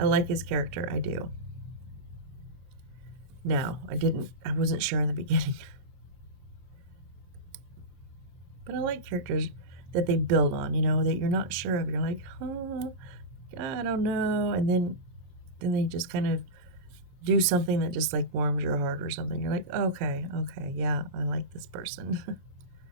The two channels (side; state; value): left; late; 22 ms